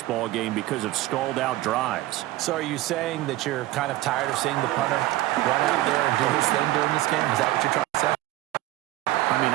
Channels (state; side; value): quieter; left; 16.7 dB